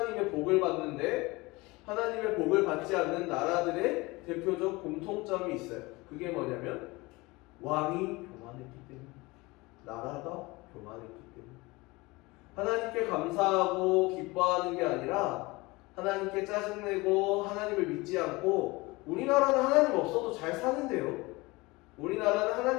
복을 받는데 하나님의 복을 받지 않는 나라들의 대표적 공통점이 있어요. 그게 뭐냐면 왕이 교만했기 때문에, 나라가 교만했기 때문에. 하나님께 감사하고 기뻐하는 게 아니라 하나님께 짜증내고 하나님을 믿지 않고, 우리나라는 하나님 없어도 잘 사는데요. 우리나라는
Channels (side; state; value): right; quieter; 23.0 dB